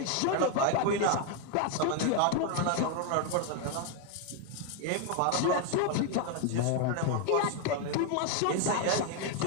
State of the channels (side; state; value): both; different; correlation 0.00